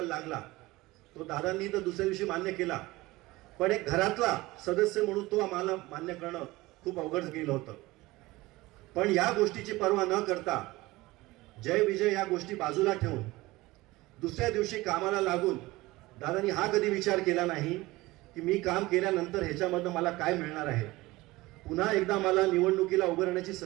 लागला तो दादांनी तर दुसऱ्या दिवशी मान्य केला, पण एक घरातला सदस्य म्हणून तो आम्हाला मान्य करणं खूप अवघड गेलं होतं. पण या गोष्टीची पर्वा न करता जय विजय या गोष्टी बाजूला ठेवून दुसऱ्या दिवशी कामाला लागून दादांनी हा कधी विचार केला नाही की मी काम केल्यानंतर ह्याच्यामधनं मला काय मिळणार आहे, पुन्हा एकदा मला निवडणुकीला उभं राहण्याची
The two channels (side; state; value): left; quieter; 19.9 dB